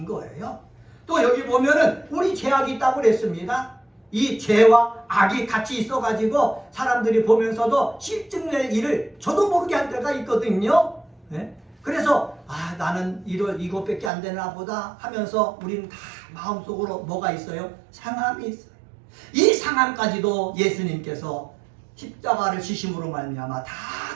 거예요. 또 여기 보면은 우리 죄악이 있다고 그랬습니다. 이 죄와 악이 같이 있어가지고 사람들이 보면서도 실증낼 일을 저도 모르게 할 때가 있거든요. 네? 그래서 나는 이것밖에 안 되나 보다 하면서 우리는 다 마음속으로 뭐가 있어요? 상함이 있어요. 이 상함까지도 예수님께서 십자가를 지심으로 말미암아 다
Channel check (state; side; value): drops out; left; at 14.1 s